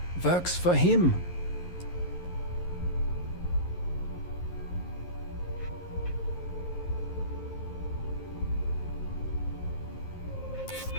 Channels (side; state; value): right; late; 11 ms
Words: works for him.